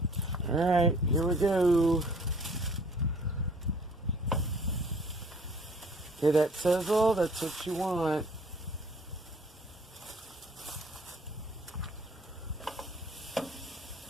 All right, here we go. Hear that sizzle? That's what you want.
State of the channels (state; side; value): normal; both; correlation 0.55